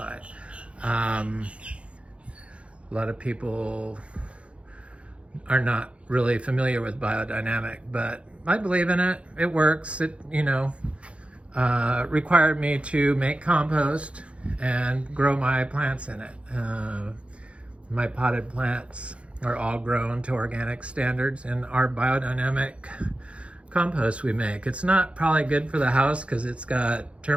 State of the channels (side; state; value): left; late; 0.061 ms